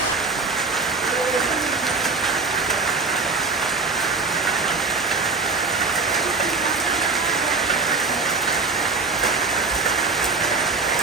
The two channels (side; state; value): left; quieter; 4.3 dB